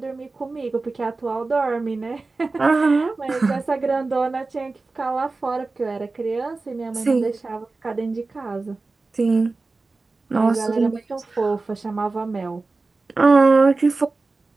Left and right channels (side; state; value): left; quieter; 3.6 dB